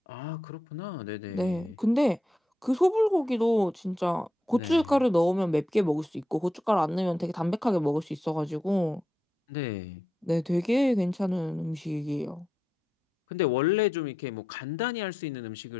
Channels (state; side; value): normal; both; correlation 0.85